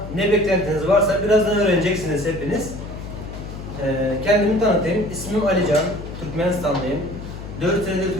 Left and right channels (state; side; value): noise; left; hum, 10 dB below the sound